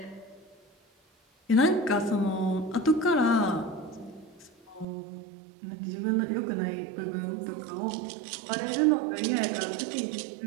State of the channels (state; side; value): drops out; left; at 4.9 s